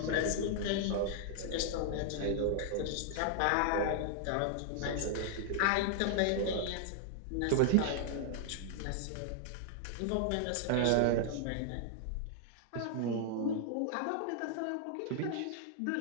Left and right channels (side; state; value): both; different; correlation -0.01